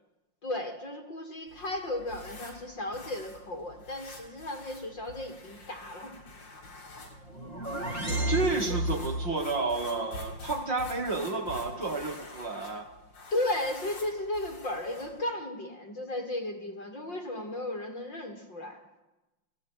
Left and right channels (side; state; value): right; late; 5.6 ms